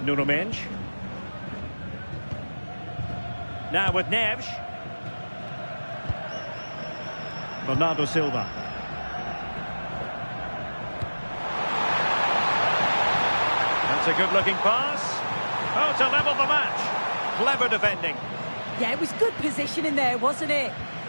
up. Nuno Mendes. Now with Neves. Bernardo Silva. That's a good-looking pass. Oh, to level the match. Clever defending. Yeah, it was good positioning there, wasn't it?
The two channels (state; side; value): inverted; both; correlation -1.00